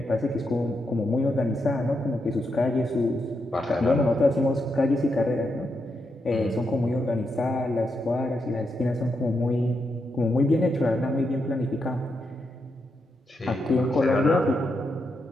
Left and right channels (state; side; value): normal; both; correlation 0.83